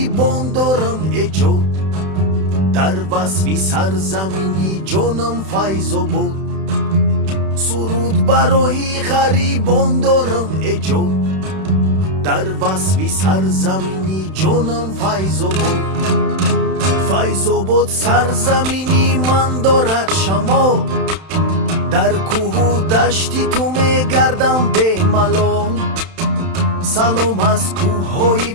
дорам эҷод дар васфи сарзамини ҷонам файзобод суруд барои ғарибон дорам эҷод дар васфи сарзамини ҷонам файзобод файзобод сарзамини ман дорад шамол дар кӯҳу дашти ту мегардам бемалол салом аз кӯҳҳои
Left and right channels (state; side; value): late; left; 31 ms